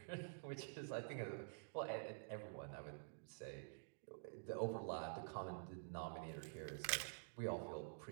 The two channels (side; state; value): left; silent; digital silence